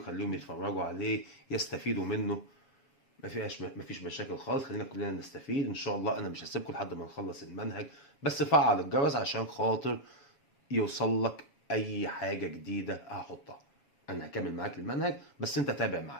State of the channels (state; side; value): late; right; 7.2 ms